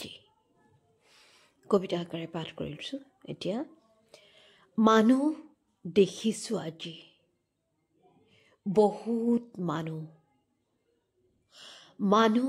কবিতা আকাৰে পাঠ কৰিছোঁ এতিয়া। মানুহ দেখিছোঁ আজি, বহুত মানুহ।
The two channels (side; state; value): both; identical; correlation 1.00